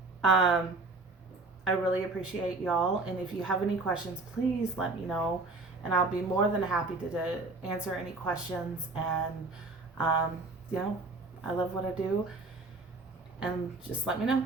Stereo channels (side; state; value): left; quieter; 3.4 dB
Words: I really appreciate y'all, and if you have any questions, please let me know, and I'll be more than happy to answer any questions. And I love what I do, and just let me know.